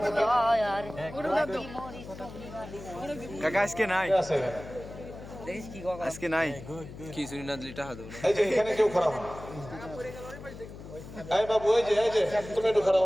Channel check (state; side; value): noise; left; hum, 14 dB below the sound